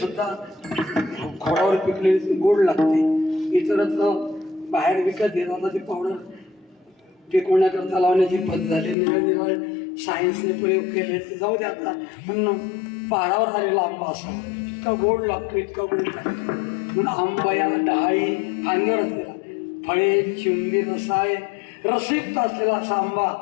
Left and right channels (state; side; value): drops out; right; at 9.0 s